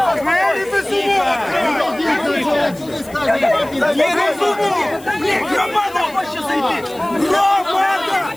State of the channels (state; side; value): noise; left; hiss, 22 dB below the sound